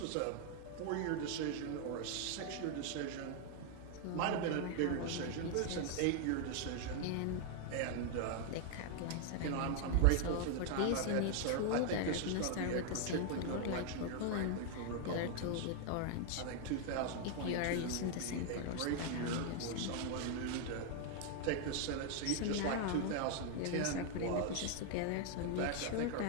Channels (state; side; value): different; both; correlation 0.00